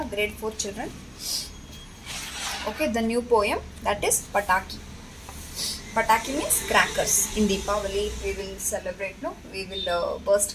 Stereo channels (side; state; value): both; identical; correlation 1.00